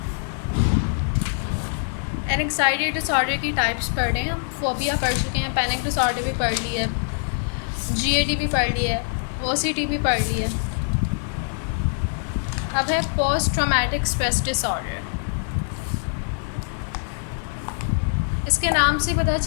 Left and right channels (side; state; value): right; silent; digital silence